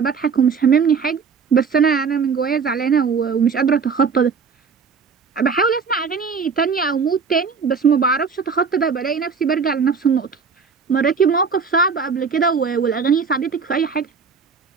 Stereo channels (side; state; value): left; quieter; 5.6 dB